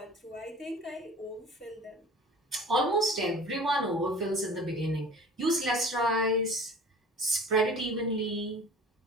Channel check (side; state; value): both; normal; correlation 0.44